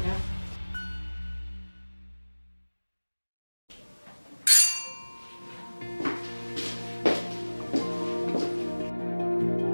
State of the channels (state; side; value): inverted; both; correlation -1.00